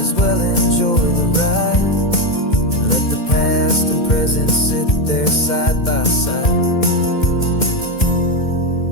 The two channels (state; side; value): late; right; 2.1 ms